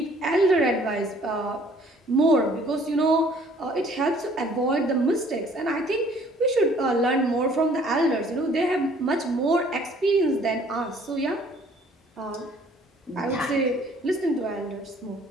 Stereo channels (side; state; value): both; normal; correlation 0.57